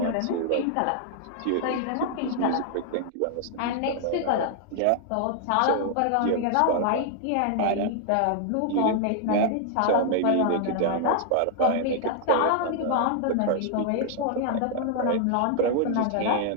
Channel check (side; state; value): both; different; correlation 0.00